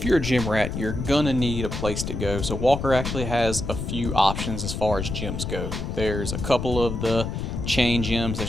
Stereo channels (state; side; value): noise; left; rumble, 4 dB below the sound